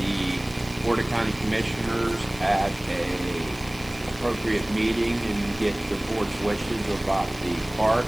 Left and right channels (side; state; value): left; noise; hiss, 19 dB below the sound